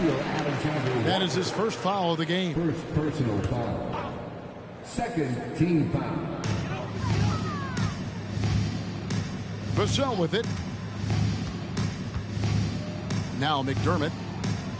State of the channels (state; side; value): identical; both; correlation 1.00